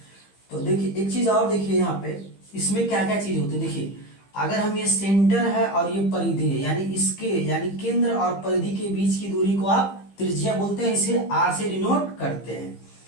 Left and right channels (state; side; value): late; right; 15 ms